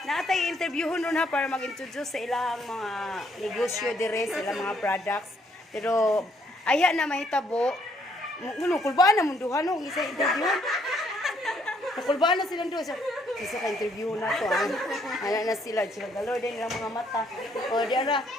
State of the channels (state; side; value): normal; both; correlation 0.68